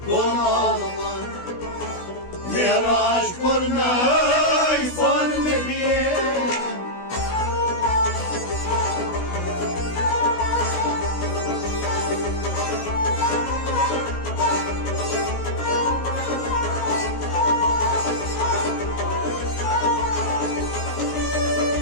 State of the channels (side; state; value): right; late; 16 ms